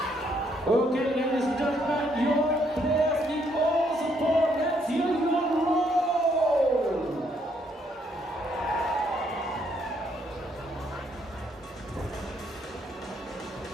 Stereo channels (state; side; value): normal; both; correlation 0.71